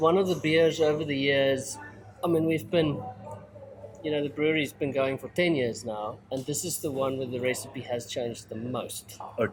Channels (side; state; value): both; identical; correlation 1.00